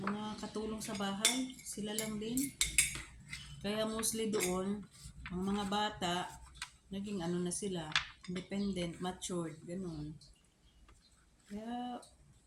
katulong sa bahay. Sila lang din. Kaya mostly doon, ang mga bata naging na sila, independent, matured, ganun. Kaya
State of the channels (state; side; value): identical; both; correlation 1.00